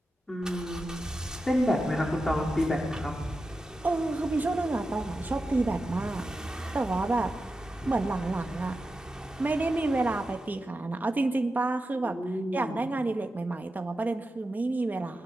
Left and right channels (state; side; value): normal; both; correlation 0.91